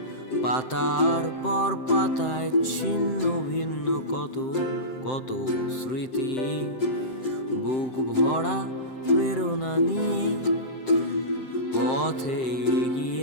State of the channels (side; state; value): right; late; 7.7 ms